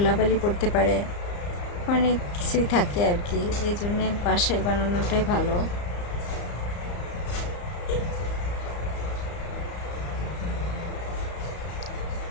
পড়তে পারে, অনেক কিছুই থাকে আর কি, এই জন্যে বাসায় বানানোটাই ভালো।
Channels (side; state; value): right; late; 34 ms